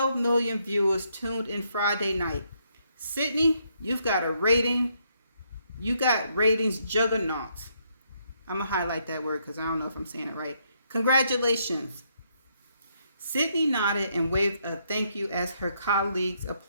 million viewers tuned in Friday night. Sydney, you got ratings juggernaut. I'm going to highlight that word because I don't know if I'm saying it right. Congratulations. Sydney nodded and waved a thank you as her colleagues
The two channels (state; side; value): inverted; both; correlation -0.74